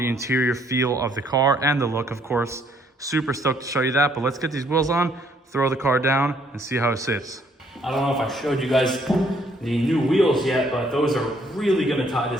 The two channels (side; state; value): both; normal; correlation 0.66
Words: interior feel of the car and the look, of course. Super stoked to show you that, but let's get these wheels on, throw the car down, and see how it sits. I don't know if I showed you guys the new wheels yet, but those are really gonna tie